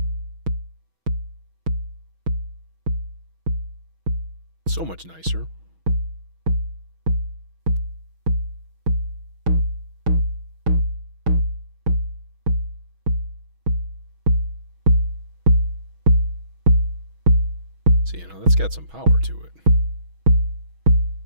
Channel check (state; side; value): late; left; 6.2 ms